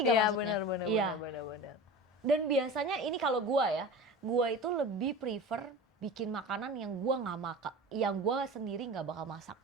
Iya maksudnya? benar Iya. benar. Dan biasanya ini kalau gua ya, gua itu lebih prefer bikin makanan yang gua nggak makan, yang gua sendiri nggak bakal masak.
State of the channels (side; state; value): both; normal; correlation 0.33